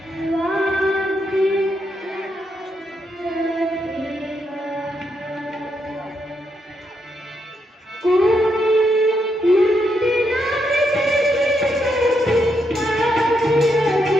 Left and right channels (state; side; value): normal; both; correlation 0.79